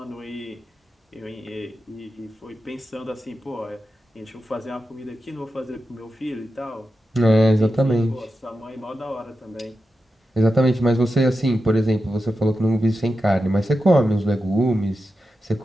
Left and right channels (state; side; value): normal; both; correlation 0.90